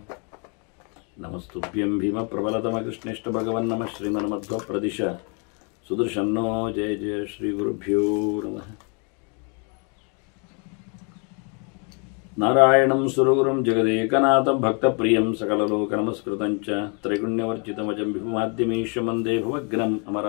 नमस्तुभ्यं भीमप्रबलतमकृष्णेष्ट भगवन् नमः श्रीमन्मध्वप्रदिश सुदर्शन्नो जय जय श्रीगुरुभ्यो नमः नारायणं सुरगुरुं जगदेकनाथं भक्तप्रियं सकललोकनमस्कृतं च त्रैगुण्यवर्जितमजं विभुमाद्यमीशं वन्दे भुवग्नम्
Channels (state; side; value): quieter; right; 36.5 dB